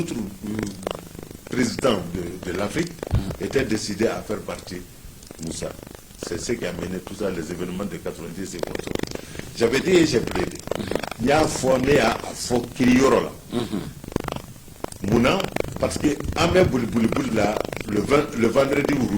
présidents de l'Afrique, était décidée à faire partie Moussa. C'est ce qui a mené tout ça, les événements de 90 et comme ça. J'avais dit et j'ai plaidé. Il y a un fourné à Fokirioro là. Mouna, parce que Amé Bouli là, le vendredi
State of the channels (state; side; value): identical; both; correlation 1.00